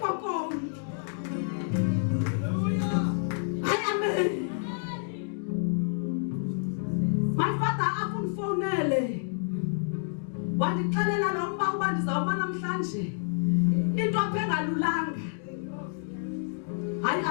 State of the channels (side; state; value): right; silent; digital silence